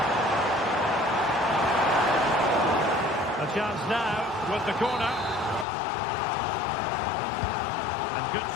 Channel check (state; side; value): drops out; right; at 5.7 s